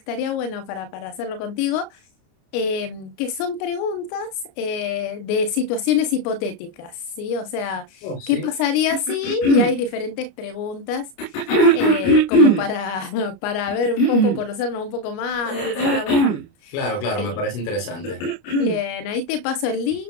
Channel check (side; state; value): right; late; 29 ms